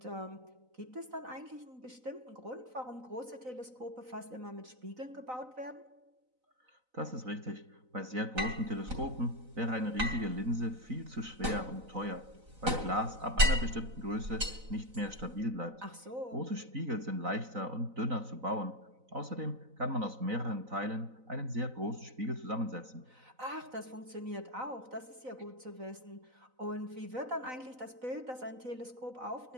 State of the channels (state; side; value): late; left; 4.0 ms